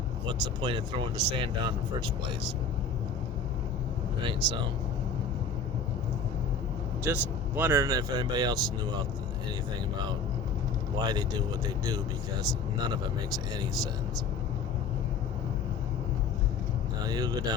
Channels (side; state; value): right; quieter; 4.7 dB